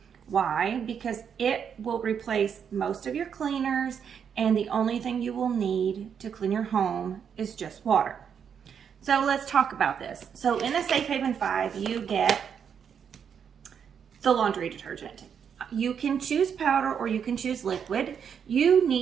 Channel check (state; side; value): quieter; left; 7.5 dB